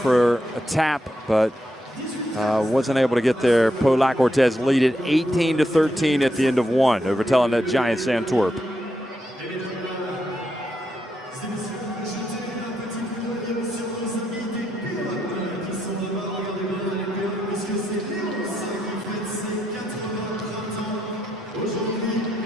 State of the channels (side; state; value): both; normal; correlation 0.81